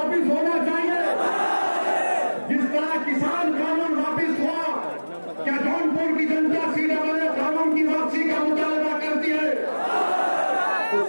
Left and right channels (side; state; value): both; inverted; correlation -1.00